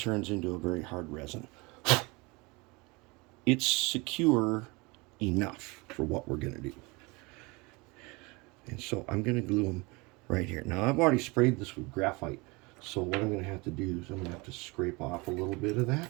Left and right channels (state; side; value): quieter; left; 26.0 dB